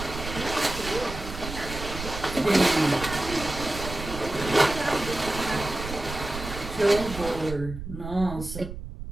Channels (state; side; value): noise; right; rumble, 9 dB below the sound